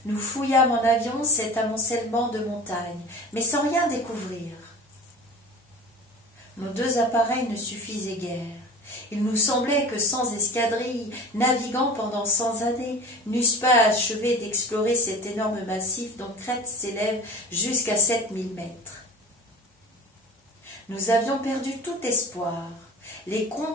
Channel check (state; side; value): normal; both; correlation 0.36